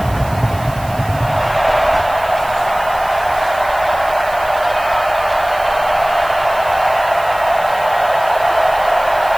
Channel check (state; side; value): noise; right; hiss, 19 dB below the sound